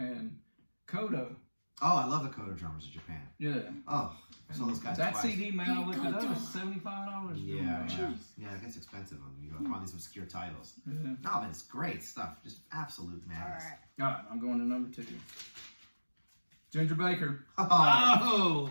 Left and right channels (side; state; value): both; inverted; correlation -1.00